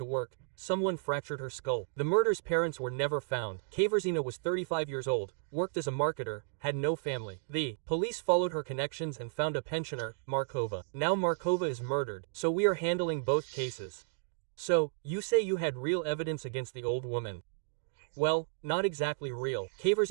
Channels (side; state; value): left; silent; digital silence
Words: work, someone fractured her skull. The murder's parents were never found. Kaverzina was 35 years old, worked as a marketer, had no family. The police followed her connections and found a pensioner, Markova. Now Markova is murdered, so we are handling both cases. So, you say you had real evidence against the old woman? Well, not exactly real.